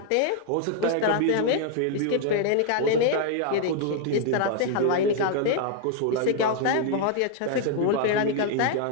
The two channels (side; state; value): both; different; correlation 0.00